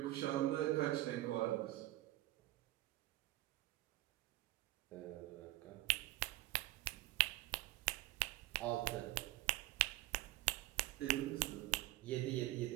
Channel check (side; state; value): left; quieter; 17.3 dB